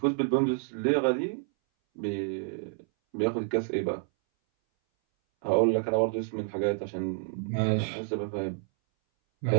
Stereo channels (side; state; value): left; silent; 59 dB below the other